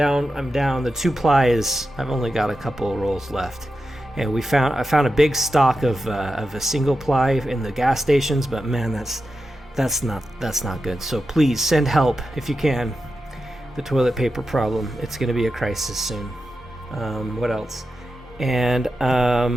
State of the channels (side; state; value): both; normal; correlation 0.90